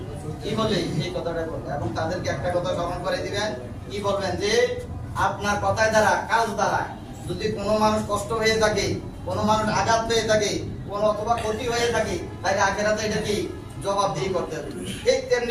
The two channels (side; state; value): both; identical; correlation 1.00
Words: কি বলে এই কথাটাই বলে এবং তাদেরকে একটা কথা স্মরণ করে দিবেন কি বলবেন যে আপনার কথায় দ্বারা কাজ দ্বারা যদি কোনো মানুষ কষ্ট হয়ে থাকে কোনো মানুষ আঘাত পেয়ে থাকে কোনো অথবা ক্ষতি হয়ে থাকে তাহলে আখেরাতে এটা কি জবাবদিহি করতে হবে ঠিক